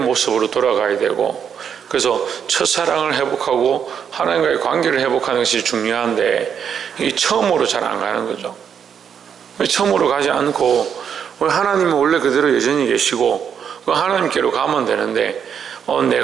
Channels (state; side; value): quieter; left; 7.7 dB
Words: 돌아가야 되고, 그래서 첫사랑을 회복하고 하나님과의 관계를 회복하는 것이 중요한데 이 처음으로 잘 안 가는 거죠. 처음으로 가지 않고 하나님은 원래 그대로 여전히 계시고 하나님께로 가면 되는데